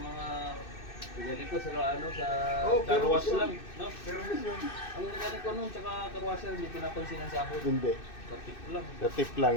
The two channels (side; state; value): right; late; 2.6 ms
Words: pinili ko sa ano sa pero karwas yun. lang, no? Pero miss yun. Ang pinili ko nun tsaka karwasel hindi pinapansin ang sahod. Hindi. Sa tip lang. Sa tip lang